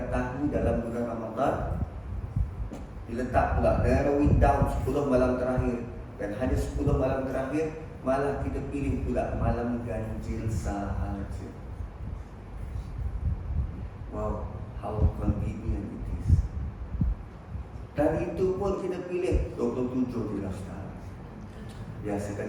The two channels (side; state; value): both; identical; correlation 1.00